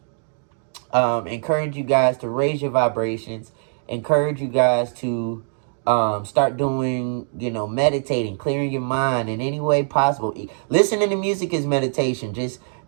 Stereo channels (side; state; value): left; silent; digital silence